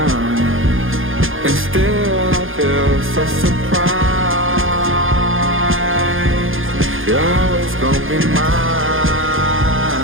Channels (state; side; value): late; left; 0.59 ms